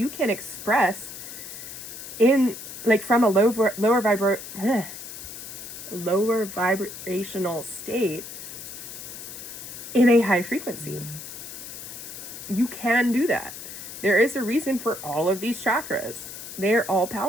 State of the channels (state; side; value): noise; left; hiss, 11 dB below the sound